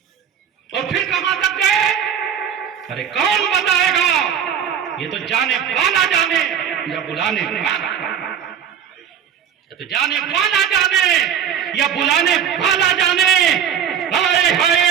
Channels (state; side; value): quieter; left; 8.5 dB